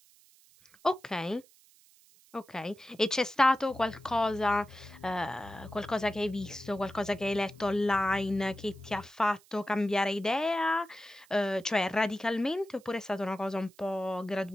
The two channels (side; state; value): right; noise; hiss, 28 dB below the sound